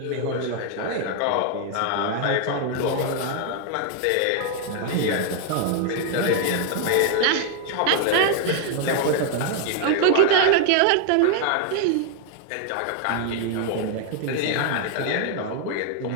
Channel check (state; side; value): different; both; correlation 0.00